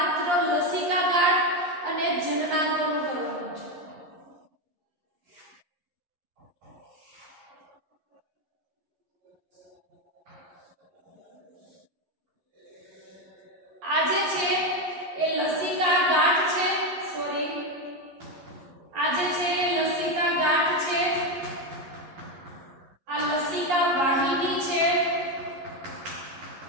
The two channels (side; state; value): left; late; 11 ms